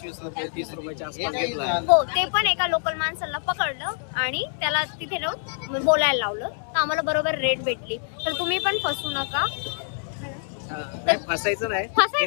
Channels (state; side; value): silent; right; 61 dB below the other